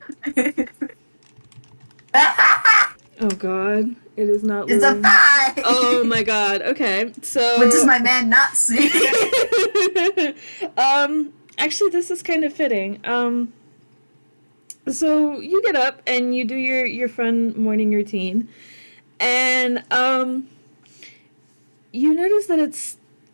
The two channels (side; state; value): both; inverted; correlation -1.00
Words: Oh god, it is not It's a loading. 5! Oh my god. Okay, so What does my man not see? actually, this is kind of fitting. So you get up and you do your fun morning routine, and you notice that it's